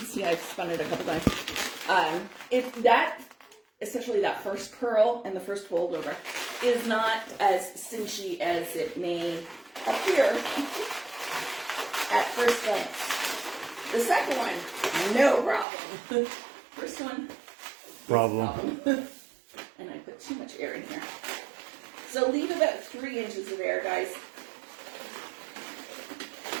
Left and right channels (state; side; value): drops out; left; at 15.7 s